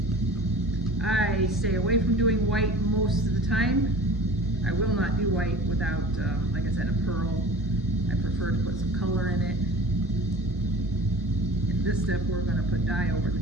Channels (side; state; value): both; normal; correlation 0.40